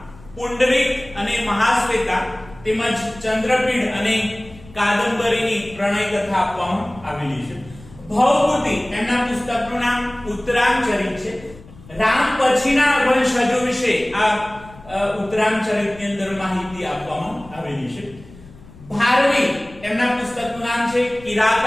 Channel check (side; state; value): left; noise; rumble, 21 dB below the sound